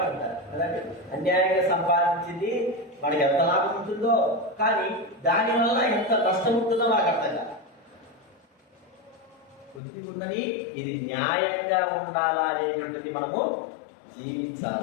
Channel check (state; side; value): drops out; right; at 9.8 s